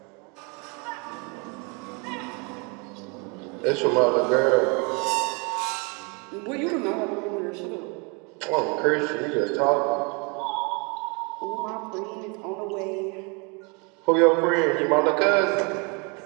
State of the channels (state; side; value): quieter; left; 32.0 dB